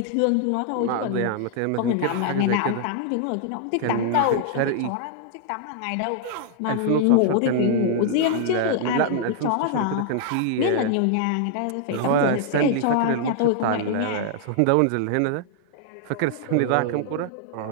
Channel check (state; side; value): different; both; correlation -0.01